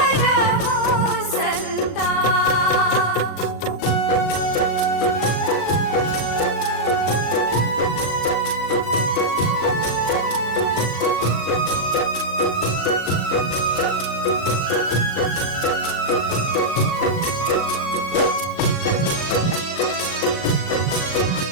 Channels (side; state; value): right; late; 38 ms